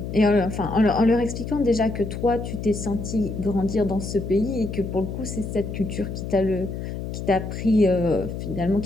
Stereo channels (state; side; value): noise; left; hum, 6 dB below the sound